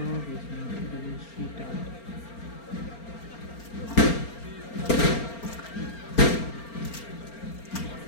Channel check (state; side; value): late; right; 4.4 ms